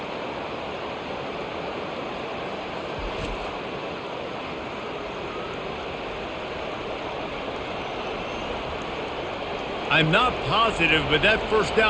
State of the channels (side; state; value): both; identical; correlation 1.00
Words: I'm not positive, but that first